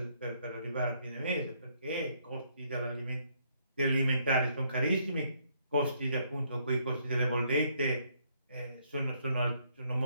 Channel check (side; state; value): both; inverted; correlation -0.70